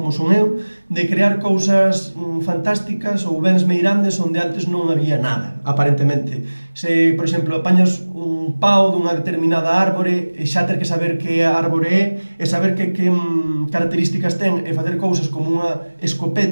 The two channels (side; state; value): both; inverted; correlation -1.00